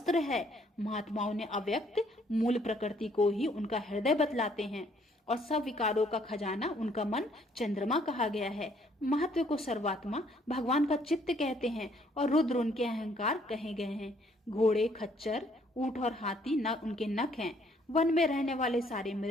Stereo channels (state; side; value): normal; both; correlation 0.65